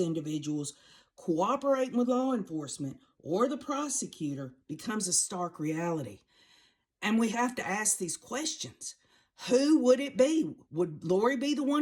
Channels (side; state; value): both; identical; correlation 1.00